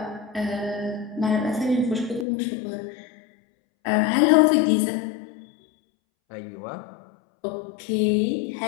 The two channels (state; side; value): drops out; right; at 2.2 s